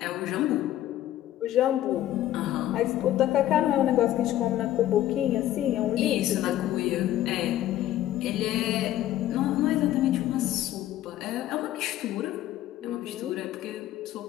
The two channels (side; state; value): right; quieter; 13.2 dB